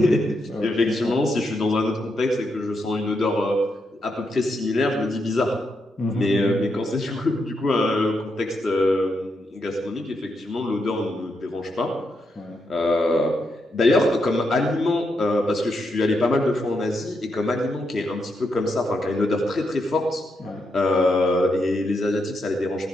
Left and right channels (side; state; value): both; normal; correlation 0.82